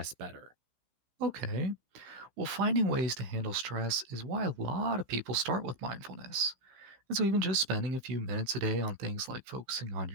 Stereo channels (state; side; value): late; left; 15 ms